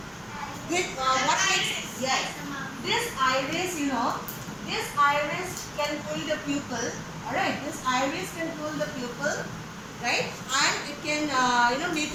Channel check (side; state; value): both; identical; correlation 1.00